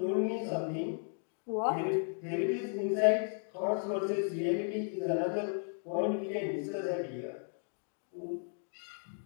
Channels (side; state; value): right; silent; 55 dB below the other